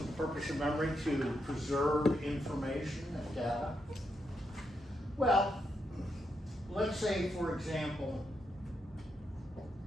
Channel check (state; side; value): normal; both; correlation 0.82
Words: the purpose of memory to preserve information and data? Well, let's say, for example,